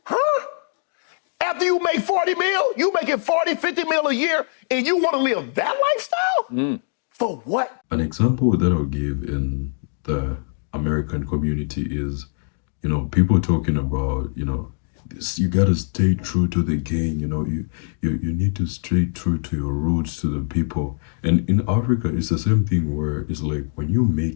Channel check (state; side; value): silent; right; digital silence